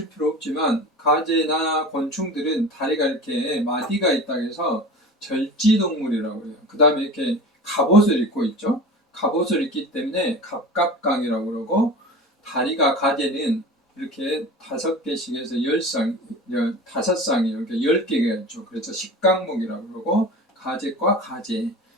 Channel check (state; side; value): normal; both; correlation 0.35